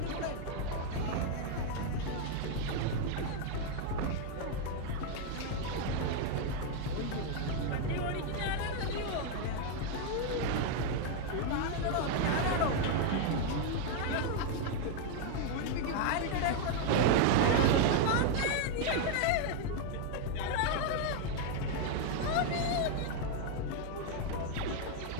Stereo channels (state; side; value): different; both; correlation 0.01